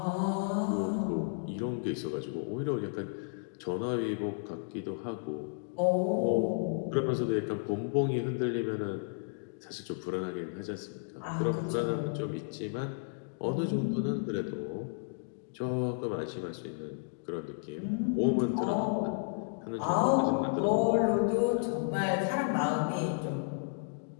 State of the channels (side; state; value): right; silent; digital silence